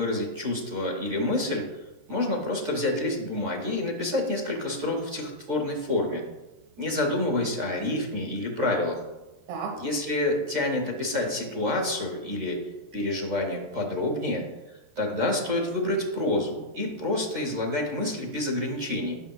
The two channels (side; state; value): left; late; 13 ms